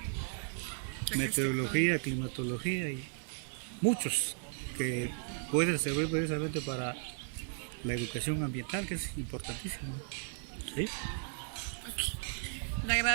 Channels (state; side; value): silent; left; 54 dB below the other